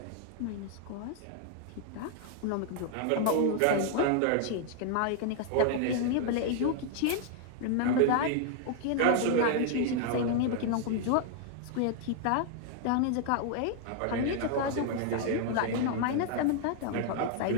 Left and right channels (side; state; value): both; different; correlation 0.00